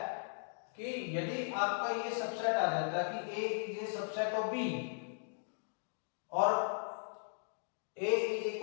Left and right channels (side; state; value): right; silent; digital silence